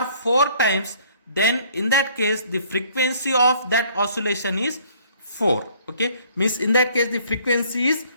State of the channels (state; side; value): inverted; both; correlation -0.58